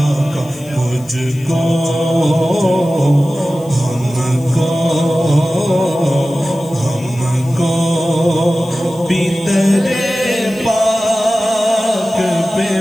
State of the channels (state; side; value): noise; left; hiss, 24 dB below the sound